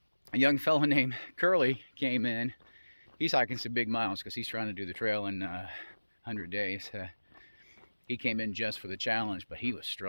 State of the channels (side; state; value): both; inverted; correlation -1.00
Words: A young fellow named Curly came in. He's hiking some big miles because he's trying to do the trail in 100 days. He came in just for the challenge, but he was